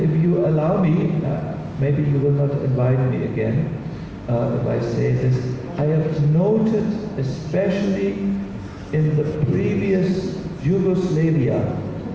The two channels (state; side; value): identical; both; correlation 1.00